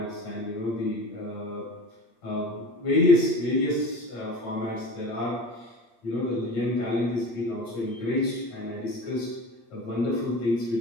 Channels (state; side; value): late; right; 8.6 ms